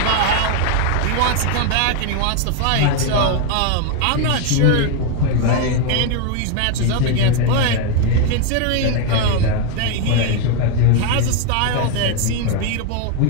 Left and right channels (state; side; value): different; both; correlation 0.01